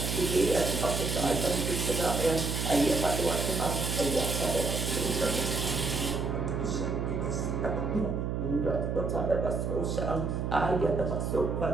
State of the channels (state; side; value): noise; right; hum, 1 dB below the sound